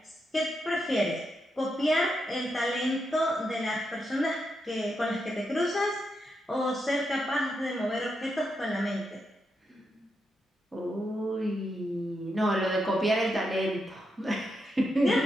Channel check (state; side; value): normal; both; correlation 0.84